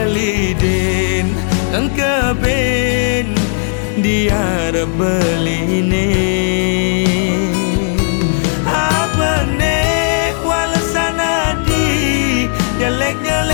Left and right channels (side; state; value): right; silent; digital silence